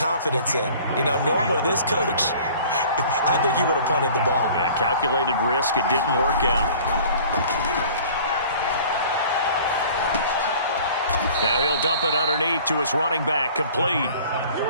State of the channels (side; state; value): both; inverted; correlation -0.48